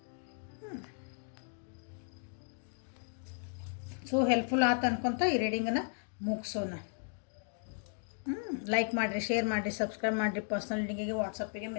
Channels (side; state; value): right; silent; 54 dB below the other